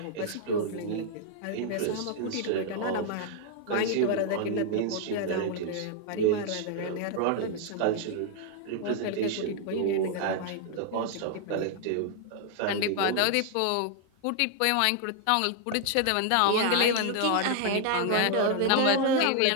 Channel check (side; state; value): both; different; correlation 0.00